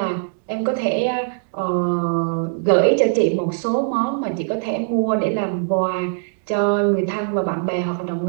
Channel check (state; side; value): silent; left; 65 dB below the other